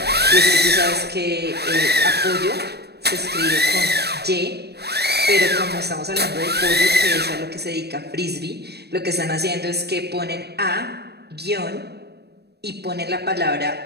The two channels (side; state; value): left; late; 0.47 ms